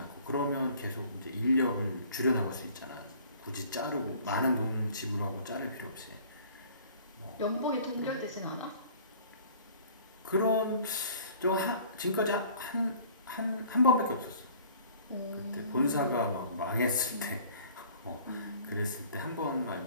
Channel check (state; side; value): inverted; both; correlation -0.51